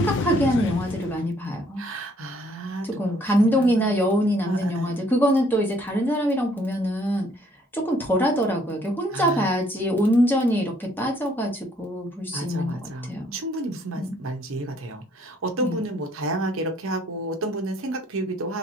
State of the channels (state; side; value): normal; both; correlation 0.64